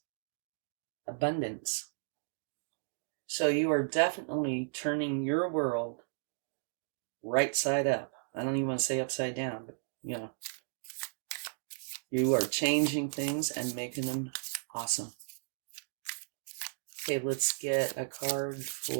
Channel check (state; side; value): silent; left; digital silence